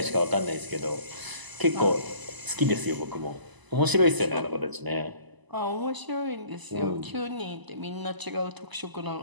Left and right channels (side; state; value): left; late; 1.0 ms